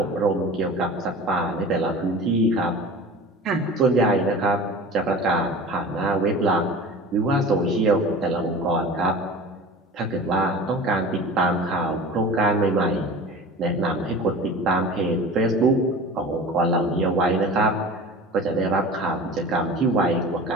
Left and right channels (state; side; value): normal; both; correlation 0.37